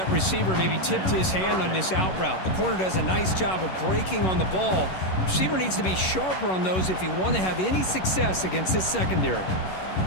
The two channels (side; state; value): right; late; 11 ms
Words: receiver maybe tipped his hand on this out route. The corner does a nice job of breaking on the ball. Receiver needs to be sharper on those if you want to have any success against this secondary.